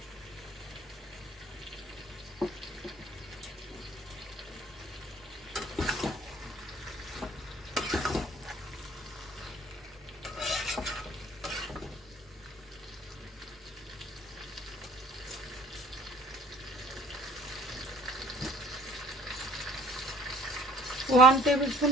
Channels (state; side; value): normal; both; correlation 0.54